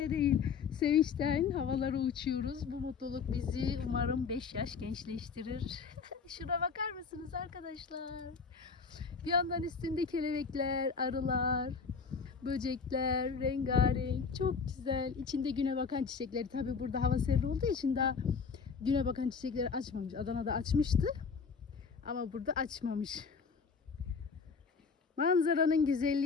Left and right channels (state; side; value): quieter; right; 5.5 dB